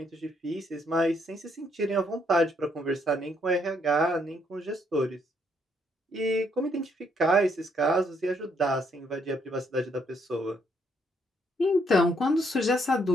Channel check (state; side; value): normal; both; correlation 0.71